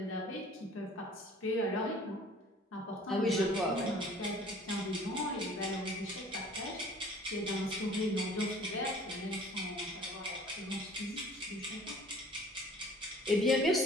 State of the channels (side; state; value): both; normal; correlation 0.50